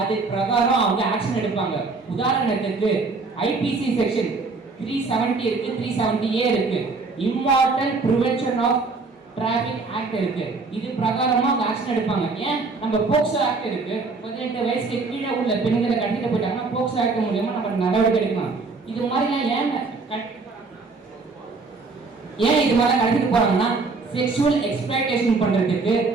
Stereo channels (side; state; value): left; quieter; 4.0 dB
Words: அது பிரகாரம் அவங்க ஆக்ஷன் எடுப்பாங்க. உதாரணத்துக்கு ஐபிசி செக்ஷன் 370 இருக்கு, 370A இருக்கு, immoral prevention of traffic act இருக்கு. இது பிரகாரமா ஆக்ஷன் எடுப்பாங்க. ஏன் நம்ம போக்சோ ஆக்ட் இருக்கு. 18 வயசுக்கு கீழே உள்ள பெண்களை கடத்திட்டு போயிட்டாங்கன்னா போக்சோ ஆக்ட் மூலமா நம்ம நடவடிக்கை எடுக்கலாம். இது மாதிரிலாம் ஏன் இது மாதிரி கடத்திட்டு போறாங்கன்னா செக்ஷுவல் எக்ஸ்பிளாய்டேஷன் பண்றதுக்கு,